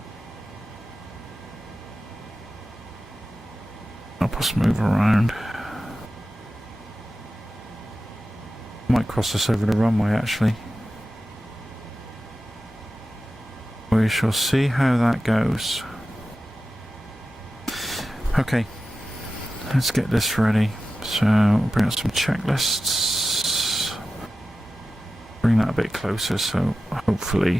Help us move around. Might cross us over the runway actually. We shall see how that goes. Okay, let's get this ready. So we'll bring up some checklists. Bring that a bit closer so hopefully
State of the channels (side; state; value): both; normal; correlation 0.93